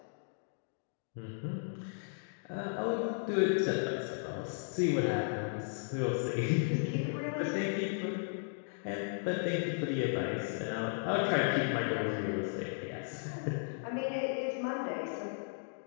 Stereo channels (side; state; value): right; silent; digital silence